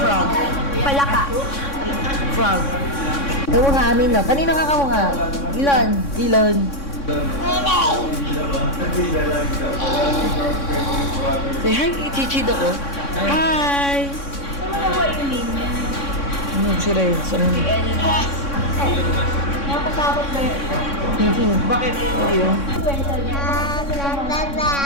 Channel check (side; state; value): right; late; 3.6 ms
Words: Palaka. Frog. Kamukha amin, no? Kanino ka kamukha? Ilon. Ilon. Say hi kay Chichi ko. Hi! Si Renzo. Nakasabot ba yun? Bakit?